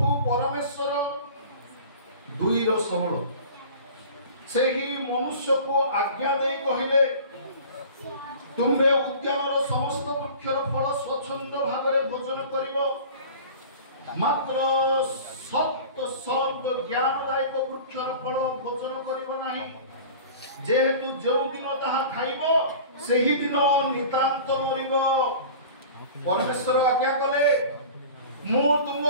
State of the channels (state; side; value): inverted; both; correlation -0.40